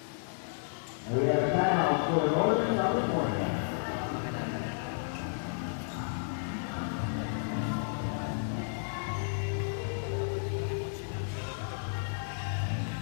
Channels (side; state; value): right; silent; digital silence